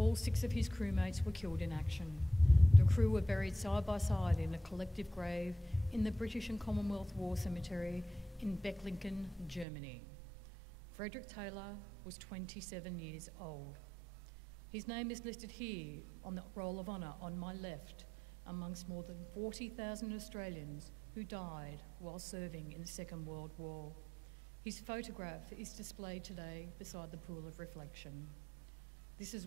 6 of his crewmates were killed in action. The crew were buried side by side in a collective grave in the British and Commonwealth War Cemetery in Becklingen, Germany. Frederick Taylor was 27 years old. His name is listed here on the Roll of Honour on my left, amongst more than 40,000 Australians who died while serving in the Second World War. His photograph is displayed today beside the Pool of Reflection. This is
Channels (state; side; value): drops out; left; at 9.7 s